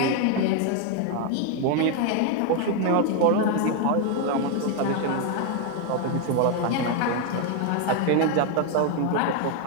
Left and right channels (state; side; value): different; both; correlation 0.01